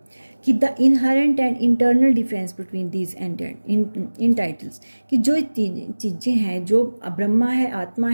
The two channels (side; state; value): both; inverted; correlation -1.00